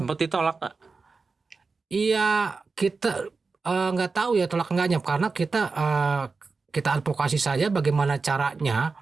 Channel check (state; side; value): quieter; left; 4.3 dB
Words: ditolak Pak? Iya, kita nggak tahu ya tolak enggaknya, karena kita advokasi saja bagaimana caranya